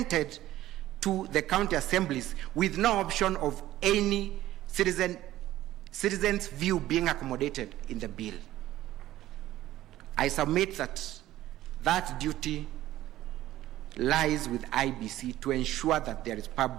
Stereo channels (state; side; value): quieter; left; 14.6 dB